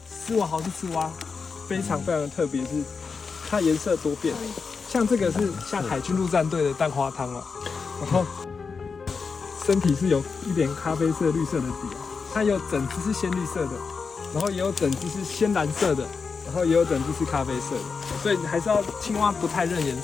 丝袜豪氏赤蛙非常非常的特别，是它颜色多变。像这个是像海军陆战队的蛋花汤哦，然后身体是有一点咖啡色、绿色的底哦，它有整只是鲜绿色的，然后也有整只是鲜蓝色的，然后也有整只是咖啡色的，所以还是要青蛙不太认颜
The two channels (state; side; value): quieter; right; 5.1 dB